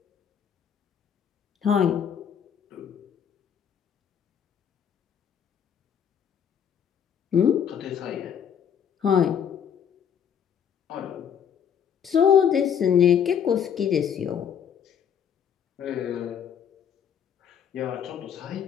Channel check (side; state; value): right; quieter; 8.2 dB